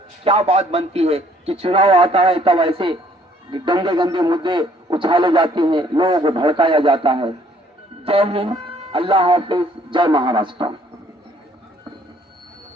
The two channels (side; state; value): both; normal; correlation 0.62